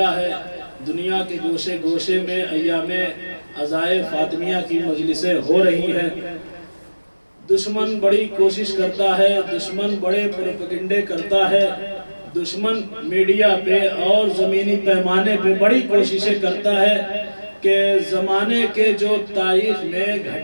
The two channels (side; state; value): both; inverted; correlation -1.00